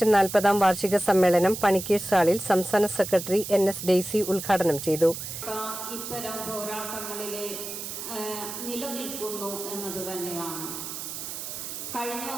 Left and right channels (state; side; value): noise; right; hiss, 8 dB below the sound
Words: 40-ാം വാർഷിക സമ്മേളനം പണിക്കേഴ്സ് ഹാളിൽ സംസ്ഥാന സെക്രട്ടറി NS ഡെയ്സി ഉദ്ഘാടനം ചെയ്തു. ഇത്തരം പോരാട്ടങ്ങളിലെ നിലനിൽക്കുന്നു എന്നത് തന്നെയാണ്. കഴിഞ്ഞ